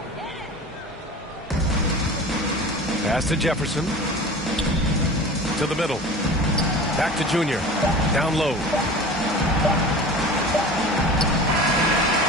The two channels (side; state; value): both; normal; correlation 0.37